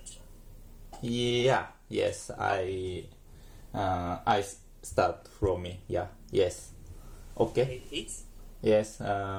Yeah. Yes. I start from me. Yeah. Yes. Okay. Please. Yes.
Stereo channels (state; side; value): identical; both; correlation 1.00